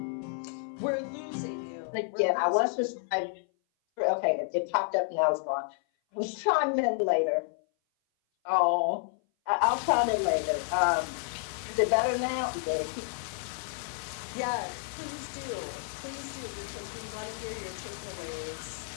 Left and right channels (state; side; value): silent; right; 56 dB below the other